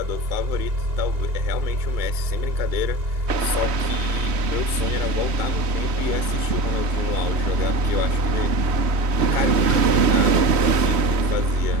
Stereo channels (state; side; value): late; left; 3.1 ms